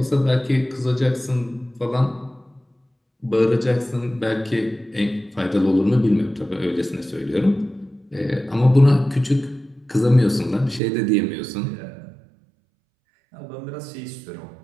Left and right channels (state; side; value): drops out; left; at 10.8 s